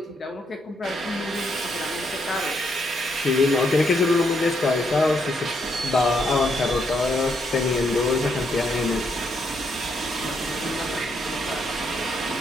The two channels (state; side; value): normal; both; correlation 0.76